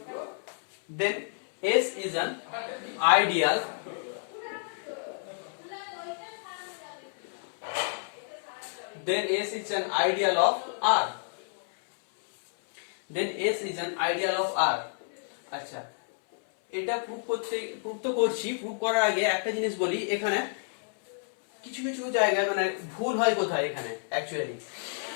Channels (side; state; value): right; silent; 58 dB below the other